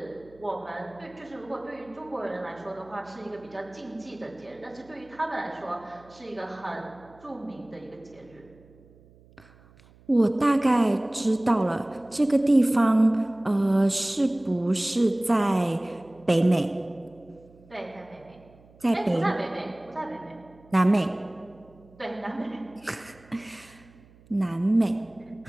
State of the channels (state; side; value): noise; right; hum, 26 dB below the sound